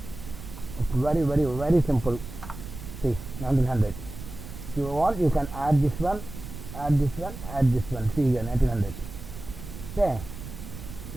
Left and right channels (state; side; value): noise; right; rumble, 12 dB below the sound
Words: It's very simple. See, 1900. If you want, you can add this one, add this one, add this one. See here, 1900. Okay.